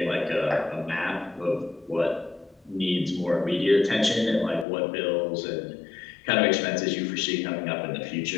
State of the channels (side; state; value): right; drops out; at 4.7 s